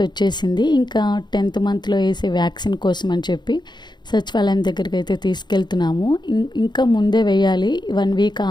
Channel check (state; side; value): late; right; 0.21 ms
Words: వచ్చేసింది. ఇంకా 10th మంత్లో వేసే వ్యాక్సిన్ కోసం అని చెప్పి సచివాలయం దగ్గరికి అయితే తీసుకెళ్తున్నాము. ఇంకా ముందే వేయాలి, 1 వీక్